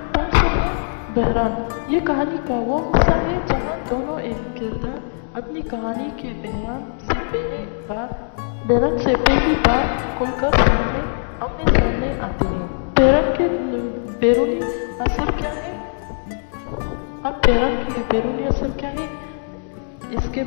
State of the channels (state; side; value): silent; right; digital silence